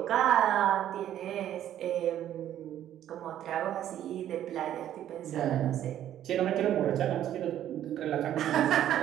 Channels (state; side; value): quieter; left; 11.5 dB